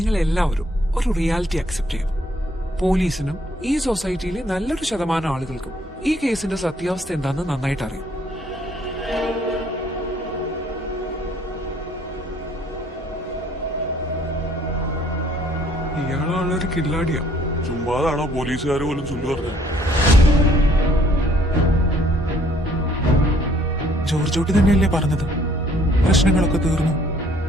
എല്ലാവരും ഒരു റിയാലിറ്റി അക്സെപ്റ്റ് ചെയ്യും. പോലീസിനും ഈ സൊസൈറ്റിയിലെ നല്ലൊരു ശതമാനം ആളുകൾക്കും ഈ കേസിന്റെ സത്യാവസ്ഥ എന്താണെന്ന് നന്നായിട്ട് അറിയാം. ഇയാളാണൊരു കില്ലാടിയാ. ചുമ്മാതാണോ പോലീസുകാർ പോലും ചൊല്ലു പറഞ്ഞത്? ജോർജോട്ടി തന്നെയല്ലേ പറഞ്ഞത് പ്രശ്നങ്ങളൊക്കെ തീർന്നു,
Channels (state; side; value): normal; both; correlation 0.62